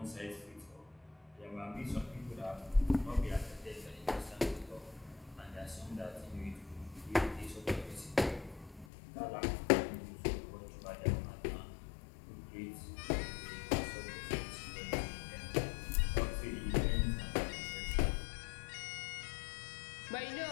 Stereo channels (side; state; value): right; drops out; at 8.8 s